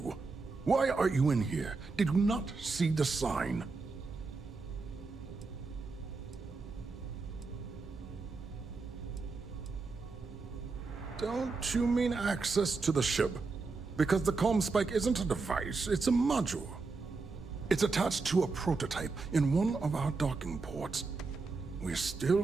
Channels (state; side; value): quieter; left; 4.1 dB